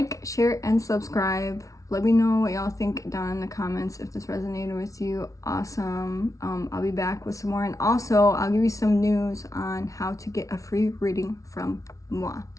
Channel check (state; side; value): late; right; 0.16 ms